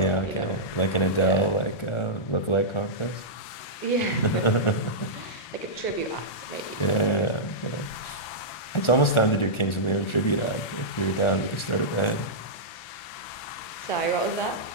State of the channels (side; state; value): right; late; 1.4 ms